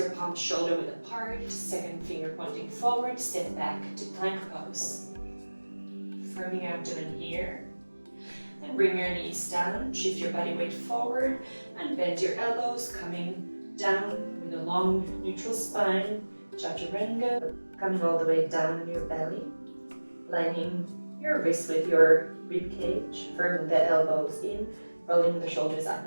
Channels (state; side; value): inverted; both; correlation -1.00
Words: palms shoulder width apart, second finger pointing forward, step back to plank pose. Firming your abdomen here. Then bring your knees down, shift your body weight forward, and bend your elbows, coming down with a long neutral spine, Chaturanga, coming all the way down in your belly, lining your wrists with your rib cage, firming the elbows in, rolling the shoulders up